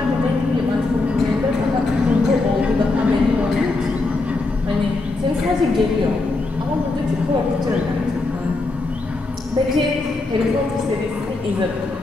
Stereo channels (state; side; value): quieter; right; 3.3 dB